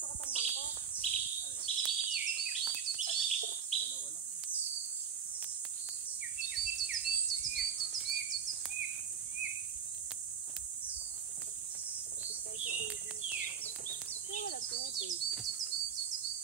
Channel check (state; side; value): quieter; left; 7.2 dB